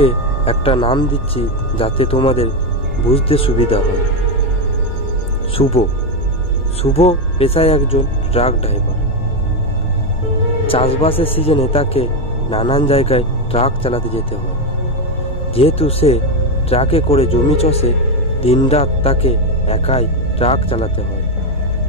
একটা নাম দিচ্ছি যাতে তোমাদের বুঝতে সুবিধা হয়। শুভ। শুভ পেশায় একজন ট্রাক ড্রাইভার। চাষবাসের সিজনে তাকে নানান জায়গায় ট্রাক চালাতে যেতে হয়। যেহেতু সে ট্রাকে করে জমি চষে, দিনরাত তাকে একাই ট্রাক চালাতে হয়।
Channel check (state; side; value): normal; both; correlation 0.08